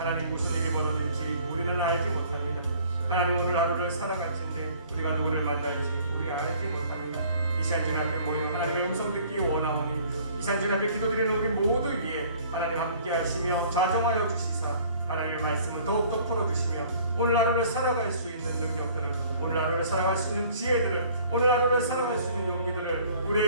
무슨 일이 벌어질지 우리는 알지 못합니다. 하나님 오늘 하루를 살아갈 텐데 우리가 누구를 만날지 우리 알지 못합니다. 이 시간 주 앞에 모여 하나님의 음성 듣기 원하오니 이 시간 주 앞에 기도드리는 우리 모두 위에 하나님 함께 하시며 좌정하여 주시사 하나님의 말씀을 더욱더 풀어주시며 오늘 하루를 살아갈 수 있는 능력들을 오늘 하루를 살아갈 수 있는 지혜들을 오늘 하루를 살아갈 수 있는 용기들을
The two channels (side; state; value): both; inverted; correlation -0.54